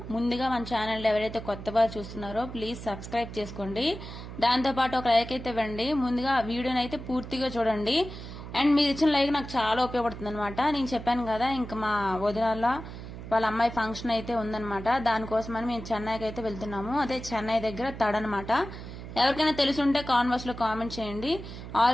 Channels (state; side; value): noise; right; hum, 11 dB below the sound